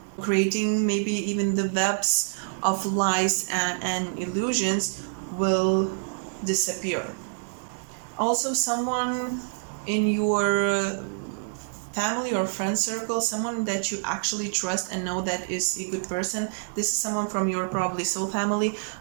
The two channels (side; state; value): left; silent; digital silence